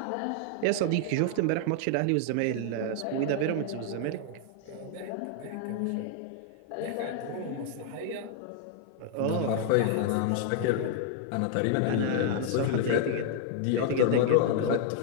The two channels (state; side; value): different; both; correlation 0.00